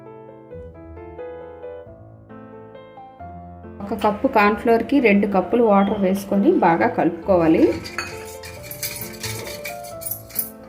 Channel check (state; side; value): identical; both; correlation 1.00